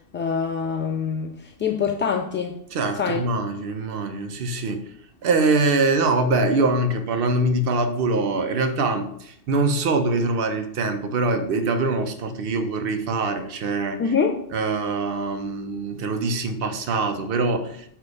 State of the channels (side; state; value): left; late; 2.7 ms